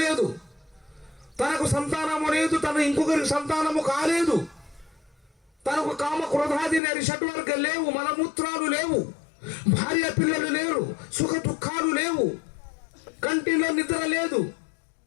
తనకు సంతానము లేదు, తను ఇంకొకరికి సంతానము కాలేదు, తనకు కామ క్రోధాది షడ్వర్గ లేవు, మలమూత్రాలు లేవు, భార్య పిల్లలు లేరు, సుఖ దుఃఖాలు లేవు, కంటిలో నిద్ర లేదు,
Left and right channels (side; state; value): right; drops out; at 6.8 s